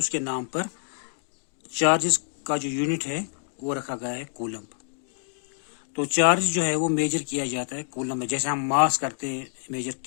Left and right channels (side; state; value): right; silent; digital silence